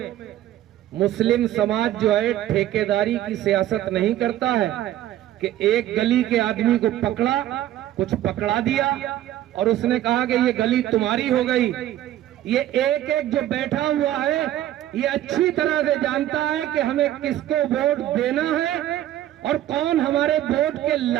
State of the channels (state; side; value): quieter; left; 13.1 dB